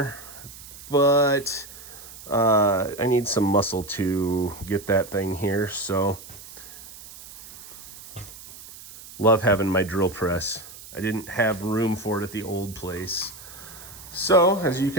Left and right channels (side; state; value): right; noise; hiss, 16 dB below the sound